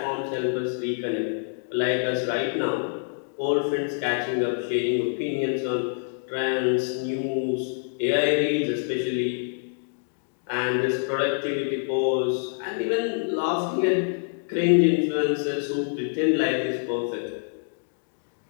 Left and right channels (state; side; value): silent; right; digital silence